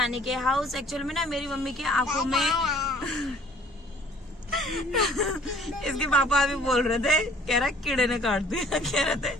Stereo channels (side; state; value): both; normal; correlation 0.54